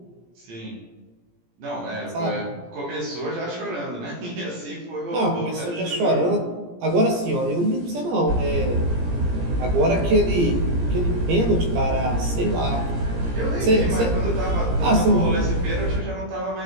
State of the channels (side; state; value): left; late; 17 ms